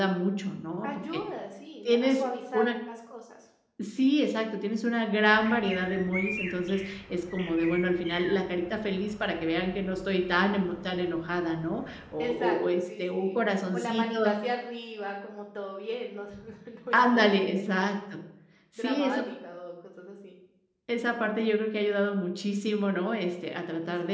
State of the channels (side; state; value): both; identical; correlation 1.00